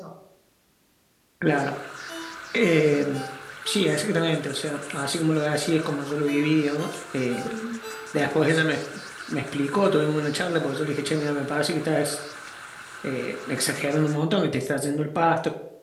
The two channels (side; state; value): both; identical; correlation 1.00